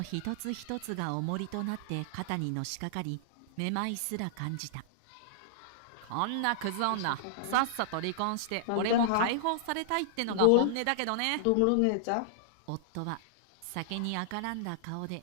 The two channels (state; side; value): different; both; correlation -0.01